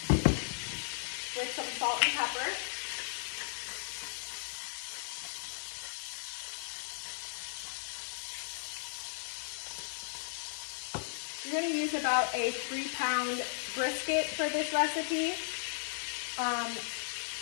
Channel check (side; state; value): right; silent; 54 dB below the other